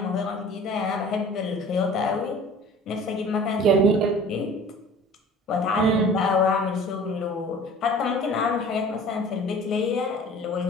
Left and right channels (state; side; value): normal; both; correlation 0.45